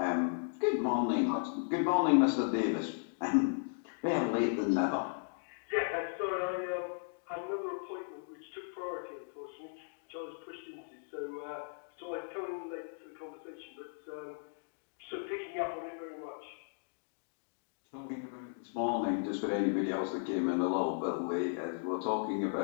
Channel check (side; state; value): right; silent; digital silence